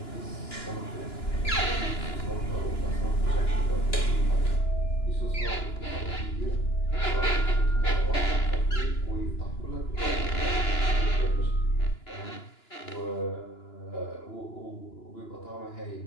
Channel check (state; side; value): late; right; 2.9 ms